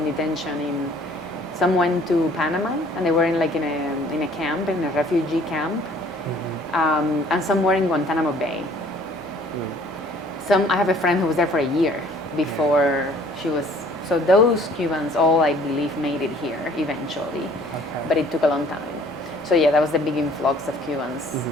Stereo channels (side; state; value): both; normal; correlation 0.55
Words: detention. Some went to Panama, and they were in a camp, in a refugee camp. And some were in Guantanamo Bay. I have a friend who was there for a year before she was. So those Cubans all, I believe, made it here eventually, but it took a long time. So yeah, that was the big influx of Cubans